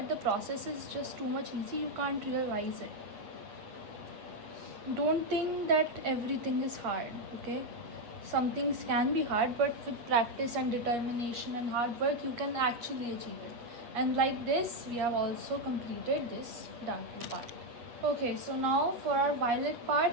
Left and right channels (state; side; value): late; left; 8.6 ms